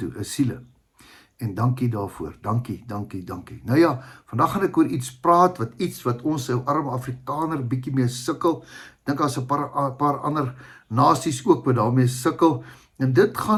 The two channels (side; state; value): both; identical; correlation 1.00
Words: is siele. En dankie daarvoor, dankie. Nou ja, vandag gaan ek oor iets praat, wat ons ou arme Afrikaner bietjie mee sukkel. Dink as 'n paar ander nasies ook wat daarmee sukkel. En dit